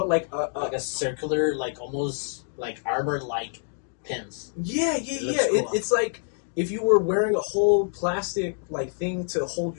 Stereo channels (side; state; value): right; silent; 61 dB below the other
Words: like a circular, like almost like armor like pins. Yeah. Cool. It's like if you were wearing a whole plastic like thing to hold